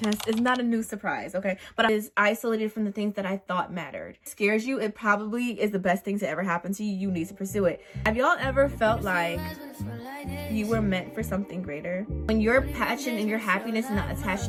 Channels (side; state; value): both; identical; correlation 1.00